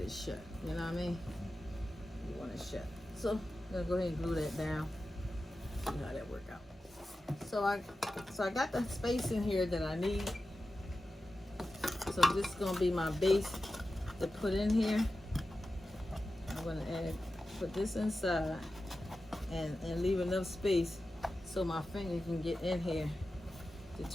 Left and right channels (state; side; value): normal; both; correlation 0.93